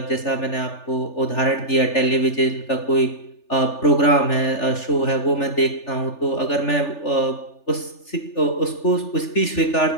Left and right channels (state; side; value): late; right; 3.4 ms